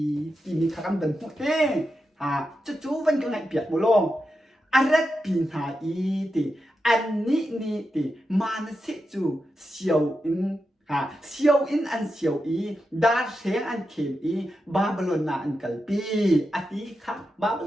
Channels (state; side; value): normal; both; correlation 0.88